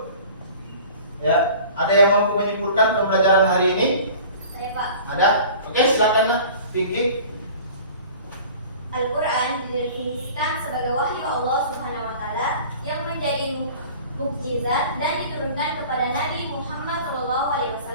ya, ada yang mampu menyimpulkan pembelajaran hari ini? Saya Pak. Ada? Oke, silakan nak, Vicky. Al-Quran didefinisikan sebagai wahyu Allah Subhanahu wa Ta'ala yang menjadi mukjizat dan diturunkan kepada Nabi Muhammad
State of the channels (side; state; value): both; inverted; correlation -0.44